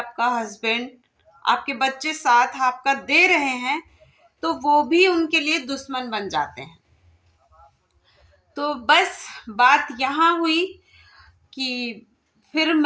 हस्बैंड, आपके बच्चे साथ आपका दे रहे हैं, तो वो भी उनके लिए दुश्मन बन जाते हैं। तो बस बात यहाँ हुई कि फिर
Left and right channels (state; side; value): identical; both; correlation 1.00